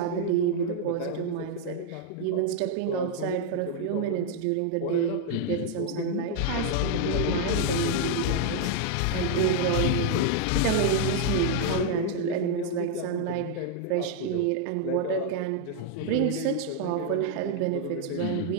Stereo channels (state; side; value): different; both; correlation 0.00